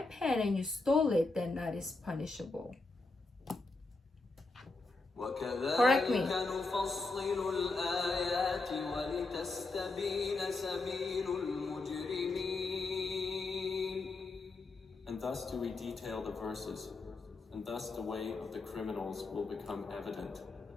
pen and you stole it, then that is punishable. Correct me. وكذلك نفصل الآيات ولتستبين سبيل المجرمين. And thus do we detail the verses, and thus the way of the criminals will become evident.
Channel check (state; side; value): quieter; right; 3.4 dB